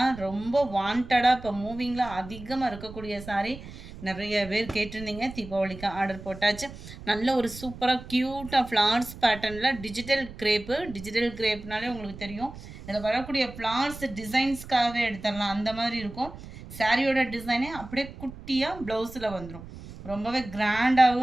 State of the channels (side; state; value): right; noise; rumble, 14 dB below the sound